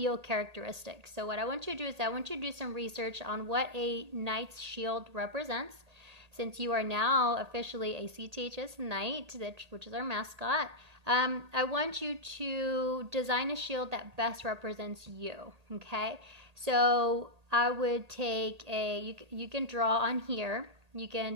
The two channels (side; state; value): left; late; 1.8 ms